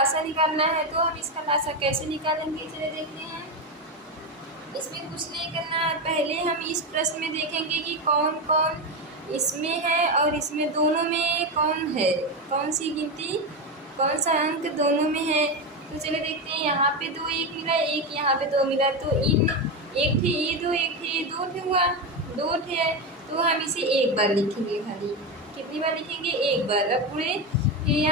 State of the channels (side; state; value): both; normal; correlation 0.14